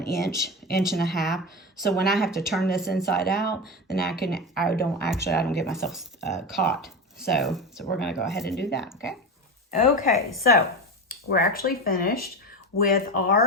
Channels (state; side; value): normal; both; correlation 0.21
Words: inch and a half. So when I have to turn this inside out, then I don't get myself caught. So we're going to go ahead and do that, okay? Okay, so we're actually finished with